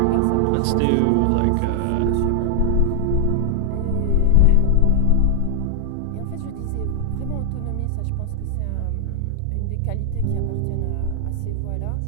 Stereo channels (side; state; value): both; different; correlation 0.00